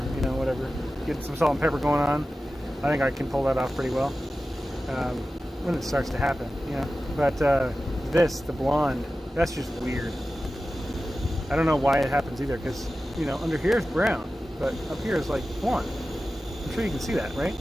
you know, whatever. Get some salt and pepper going on. I think I can pull that off pretty well when it starts to happen, you know. But the blonde, that's just weird. I don't know why it happens either, because, you know, under here is brown, but up here is like blonde. I'm sure you can see that, right?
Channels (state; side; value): normal; both; correlation 0.94